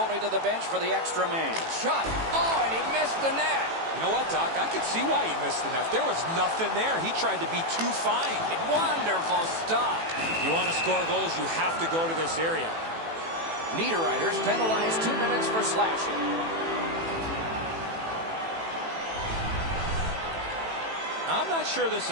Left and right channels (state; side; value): late; left; 18 ms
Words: to the bench for the extra man. Shot. Oh, and he missed the net. You know what, Doc? I could see why he missed the net. There was nothing there. He tried to be too fine. Wonderful stop. You want to score goals, you have to go to this area. Niederreiter's penalized 2 minutes for slashing. I'm not sure this